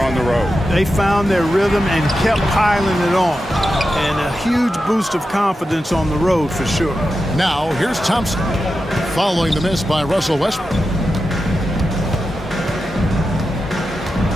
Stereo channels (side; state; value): both; normal; correlation 0.90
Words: on the road. They found their rhythm and kept piling it on. And a huge boost of confidence on the road for sure. Now, here's Thompson, following the miss by Russell Westbrook.